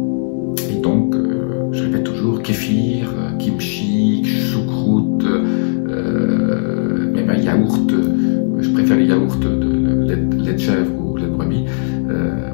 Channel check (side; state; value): right; silent; digital silence